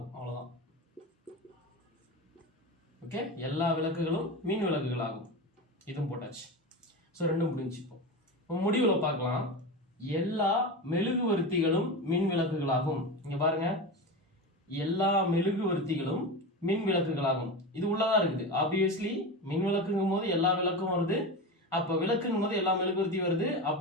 அவ்வளவுதான். ஓகே, எல்லா விளக்குகளும் மின் விளக்குகளாகும். இதுவும் போட்டாச்சு. ஸோ 2 முடிஞ்சு. இப்போ முடிவுல பார்க்கலாம். எல்லா மெழுகுவர்த்திகளும் மின் விளக்குகளாகும். இங்க பாருங்க, எல்லா மெழுகுவர்த்திகளும் மின் விளக்குகளாகும். இது உள்ளதா இருக்குது. ஆப்வியஸ்லி மின் விளக்குங்கும் போது எல்லா விளக்கும் வருது, அப்ப விளக்குங்கும் போது எல்லா மெழுகுவர்த்தி வருது.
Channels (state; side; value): normal; both; correlation 0.23